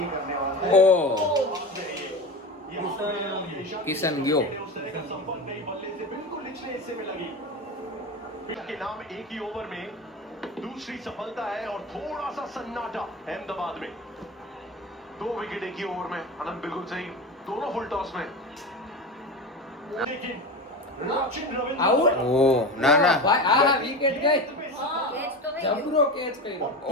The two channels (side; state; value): both; normal; correlation 0.26